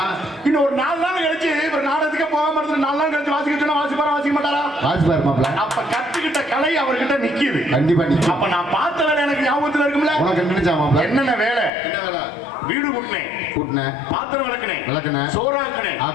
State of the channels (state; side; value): drops out; right; at 11.7 s